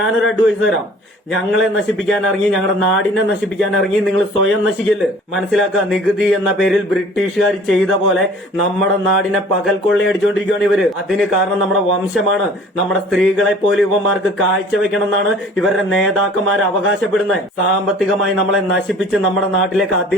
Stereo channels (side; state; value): both; normal; correlation 0.49